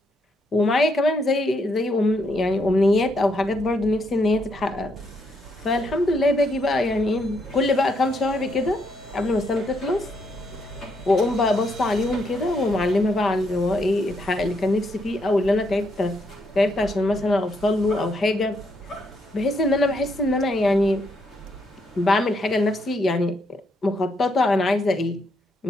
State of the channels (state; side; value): normal; both; correlation 0.76